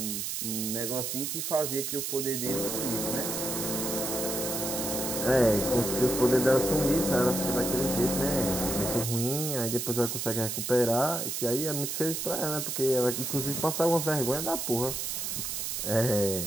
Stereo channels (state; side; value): noise; right; hiss, 3 dB below the sound